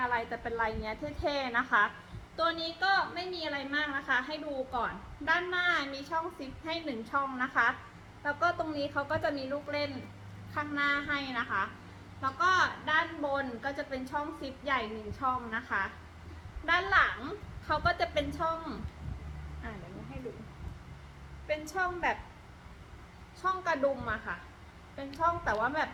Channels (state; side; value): identical; both; correlation 1.00